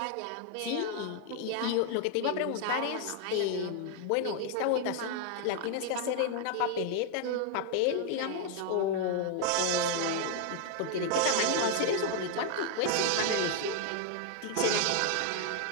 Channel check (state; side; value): different; both; correlation 0.00